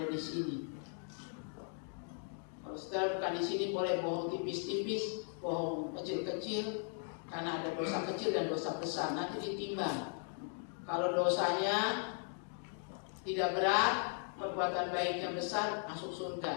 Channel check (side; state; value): right; silent; 53 dB below the other